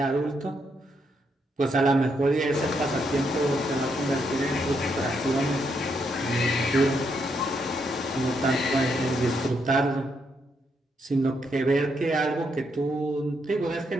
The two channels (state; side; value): normal; both; correlation 0.78